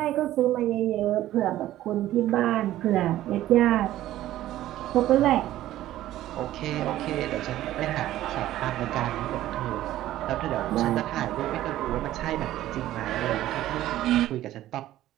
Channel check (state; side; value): quieter; left; 14.1 dB